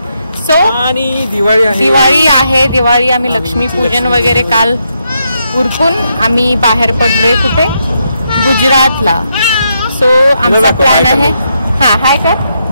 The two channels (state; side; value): inverted; both; correlation -0.80